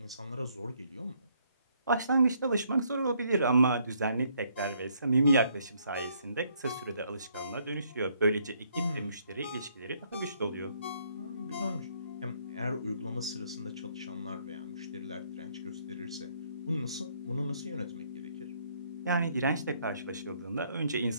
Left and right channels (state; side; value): inverted; both; correlation -0.69